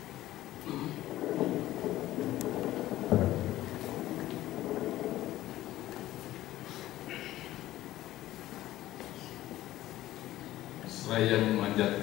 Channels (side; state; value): right; quieter; 15.1 dB